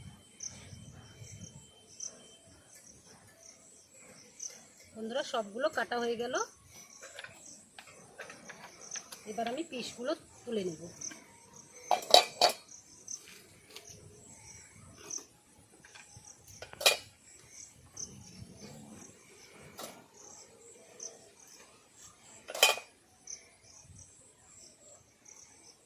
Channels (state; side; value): identical; both; correlation 1.00